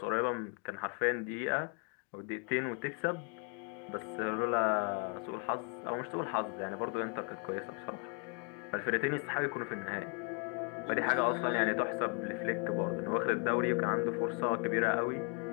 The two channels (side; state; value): right; quieter; 36.5 dB